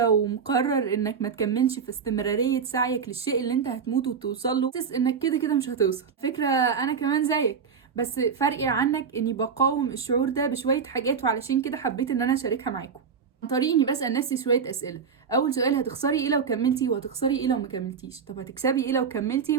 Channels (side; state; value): left; quieter; 6.3 dB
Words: ومقرر انك ما تكملش في استمرارية سعيك للشيء اللي انت هتموت وتوصل له، حاسس انك كده كده مش هتوصل. فكرة انا كمان زيك، بس فرقي عنك اني بقاوم الشعور ده بشوية حاجات، وعلشان كده حبيت ان انا اشاركها معاكم عن طريق اني بسأل نفسي شوية اسئلة. اول سؤال: هتخسري ايه لو كملتي؟ وهتخسري ايه لو ما كملتيش؟ طب هتكسبي ايه لو